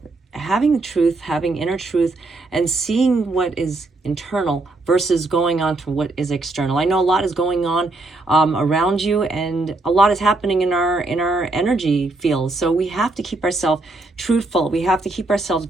Having the truth, having inner truth, and seeing what is internal versus going on to what is external. I know a lot is going on around you, and a lot is happening in our energy field. So we have to keep ourselves truthful. We have to keep ourselves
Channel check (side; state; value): left; quieter; 3.1 dB